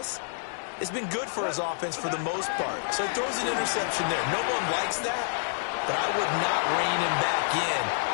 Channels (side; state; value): right; silent; digital silence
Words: has been good for his offense for the most part. So he throws an interception there. No one likes that, but I would not rein him back in.